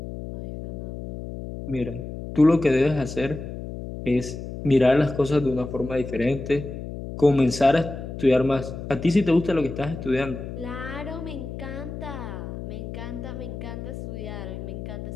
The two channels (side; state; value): left; noise; hum, 8 dB below the sound